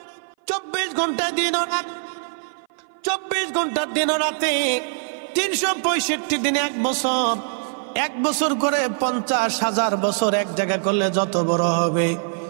24 ঘন্টা দিন ও রাত, 24 ঘন্টার দিন ও রাতে 365 দিনে 1 বছর, 1 বছর করে 50,000 বছর এক জায়গা করলে যত বড় হবে,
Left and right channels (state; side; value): silent; left; 57 dB below the other